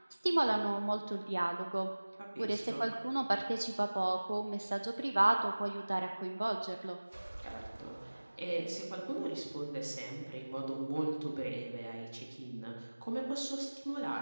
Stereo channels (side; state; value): both; inverted; correlation -1.00